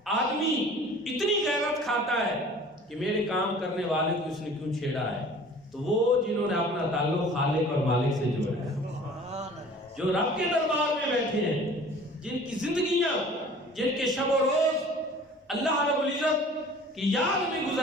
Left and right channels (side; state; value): both; normal; correlation 0.46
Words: آدمی اتنی غیرت کھاتا ہے کہ میرے کام کرنے والے کو اس نے کیوں چھیڑا ہے، تو وہ جنہوں نے اپنا تعلق خالق اور مالک سے جوڑا ہے، جو رب کے دربار میں بیٹھے ہیں، جن کی زندگیاں، جن کے شب و روز اللہ رب العزت کی یاد میں